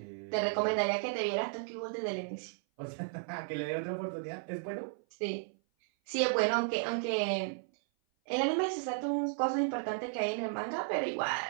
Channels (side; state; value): left; silent; 55 dB below the other